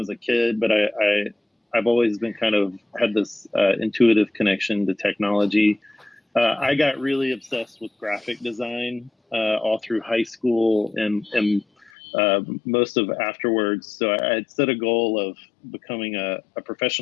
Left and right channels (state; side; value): drops out; right; at 11.9 s